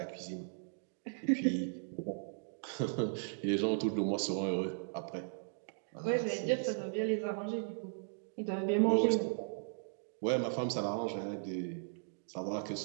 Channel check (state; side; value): silent; left; digital silence